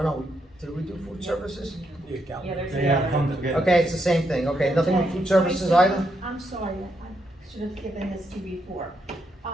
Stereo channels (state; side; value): normal; both; correlation 0.79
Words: no, did we do food services? Yeah, there's They have come together. Okay, it's the same thing, okay, nothing with food services either? I'm sorry, I should have given this to you before.